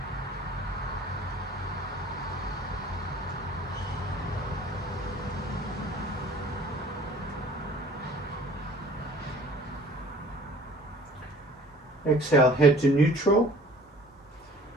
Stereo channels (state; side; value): normal; both; correlation 0.49